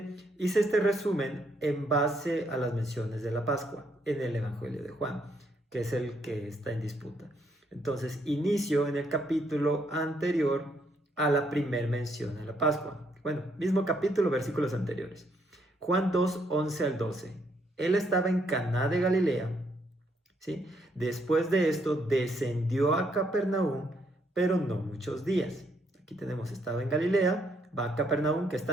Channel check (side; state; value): both; normal; correlation 0.72